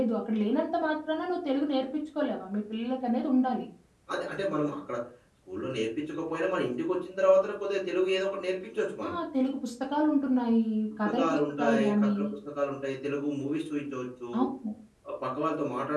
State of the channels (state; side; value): identical; both; correlation 1.00